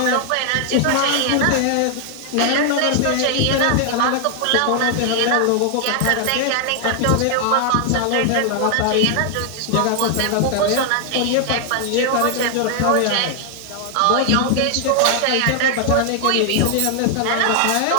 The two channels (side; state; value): both; different; correlation 0.00